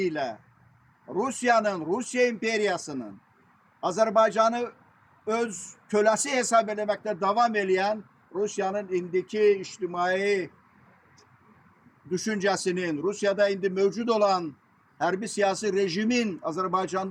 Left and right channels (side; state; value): both; identical; correlation 1.00